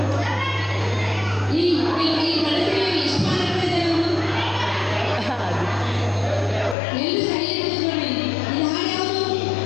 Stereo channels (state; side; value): drops out; right; at 6.8 s